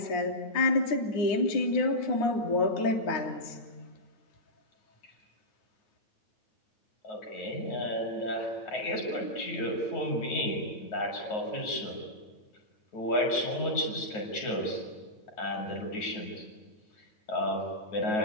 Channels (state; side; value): late; right; 9.3 ms